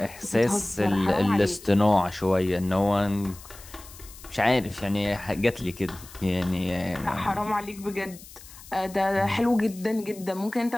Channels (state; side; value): noise; left; hiss, 19 dB below the sound